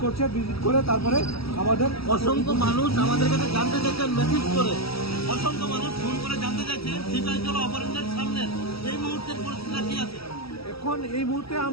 করছে। ভিজিট করে তারপরে আমাদের অসংখ্য মানুষ আমাদের কাছে জানতে চাচ্ছেন, মেসেজ করে অসংখ্য মানুষ ফোন করে জানতে চাচ্ছে সিপাহীজলা অপারেশনের সামনে এই মুহূর্তের পরিস্থিতি কি আছে। এখন এই মুহূর্তে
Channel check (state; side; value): late; right; 0.76 ms